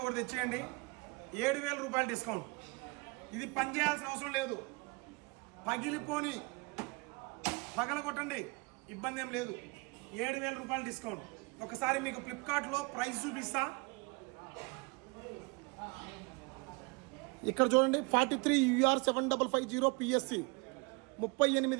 ఒకటి తెచ్చేయండి, 7,000 రూపాయలు డిస్కౌంట్. ఇది పని చేయాల్సిన అవసరం లేదు, పగిలిపోని పగల కొట్టండి, ఇబ్బంది ఏం లేదు. 7,000 రూపాయలు డిస్కౌంట్. ఒకసారి మీకు ఫ్లిప్కార్ట్లో ప్రైస్ చూపిస్తా. ఇక్కడ చూడండి, 43UR7550 PSC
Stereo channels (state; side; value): quieter; left; 28.1 dB